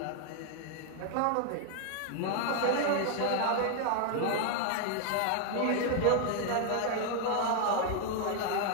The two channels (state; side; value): different; both; correlation 0.00